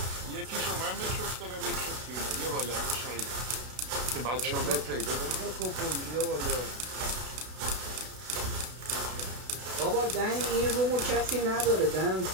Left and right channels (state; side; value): late; left; 32 ms